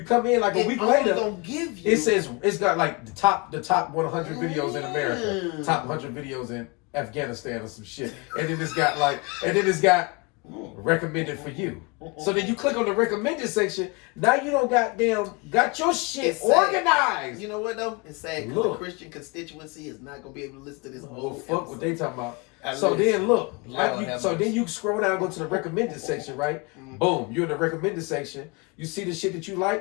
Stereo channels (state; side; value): quieter; right; 27.8 dB